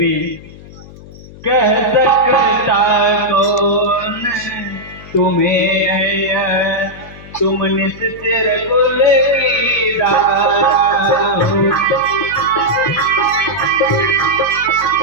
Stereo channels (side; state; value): left; noise; hum, 18 dB below the sound